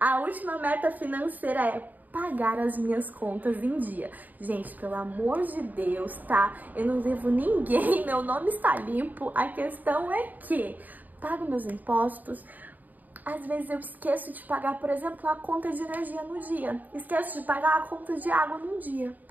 a última meta financeira é pagar as minhas contas em dia. Gente, pelo amor de Deus, tá? Eu não devo ninguém, meu nome está limpo. A questão é que pago meus impostos. Às vezes eu esqueço de pagar, por exemplo, a conta de energia no dia. Esqueço de pagar a conta de água no dia.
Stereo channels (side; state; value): left; late; 0.083 ms